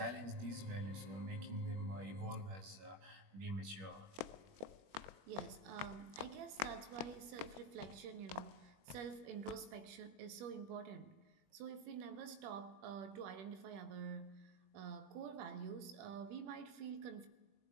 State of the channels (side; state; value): left; late; 21 ms